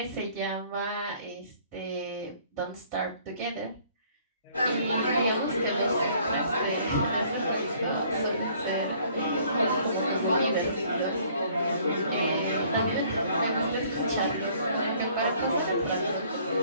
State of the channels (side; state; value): both; inverted; correlation -0.59